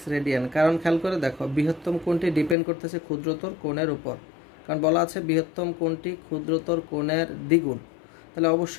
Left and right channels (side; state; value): right; drops out; at 2.6 s